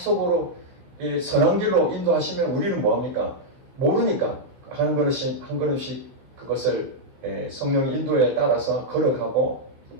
선한 길로 인도하시면 우리는 뭐합니까? 모르니까 한 걸음씩 한 걸음씩 그것을 성령의 인도에 따라서 걸어가고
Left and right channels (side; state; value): left; late; 16 ms